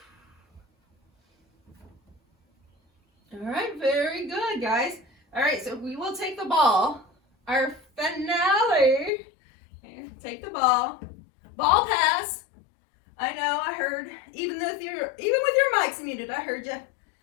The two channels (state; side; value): drops out; right; at 9.1 s